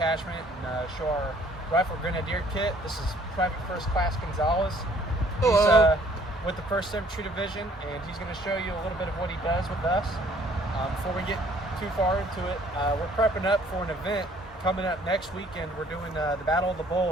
and show our rifle grenadier kit. This is Private First Class Gonzalez. He's with the 1st Infantry Division, and he's going to show you a little bit of what he does with us. Before we get too far into it, we're prepping up for an event coming up next weekend. We're doing the Battle of the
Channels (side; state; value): both; normal; correlation 0.59